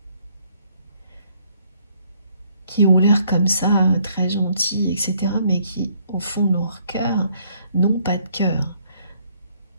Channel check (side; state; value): both; inverted; correlation -0.66